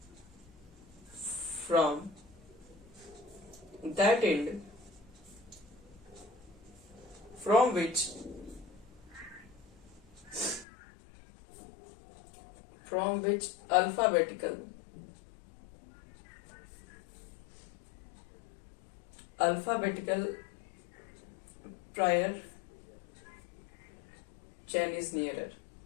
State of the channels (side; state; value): right; drops out; at 10.7 s